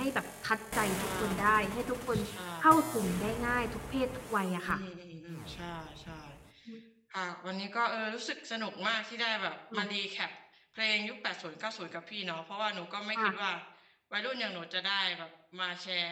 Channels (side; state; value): both; identical; correlation 1.00